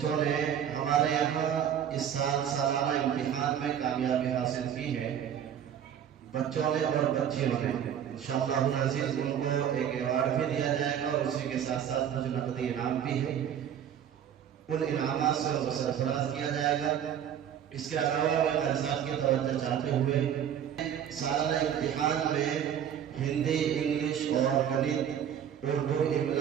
نے ہمارے یہاں اس سال سالانہ امتحان میں کامیابی حاصل کی ہے، بچوں نے اور بچیوں نے، انشاءاللہ العزیز ان کو ایک ایوارڈ بھی دیا جائے گا اور اسی کے ساتھ ساتھ کچھ نقدی انعام بھی ہے، ان انعامات سے ان کو سرفراز کیا جائے گا۔ اس کے علاوہ میں قاری صاحب کی توجہ چاہتے ہوئے سالانہ امتحان میں ہندی، انگلش اور گنت، اردو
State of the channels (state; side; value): quieter; left; 9.2 dB